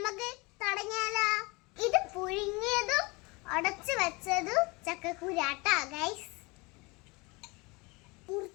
തുടങ്ങിയാലോ? ഇത് പുഴുങ്ങിയതും ഉടച്ചു വെച്ചതും ചക്കക്കുരാട്ടാ ഗൈസ്.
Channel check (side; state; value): right; quieter; 26.2 dB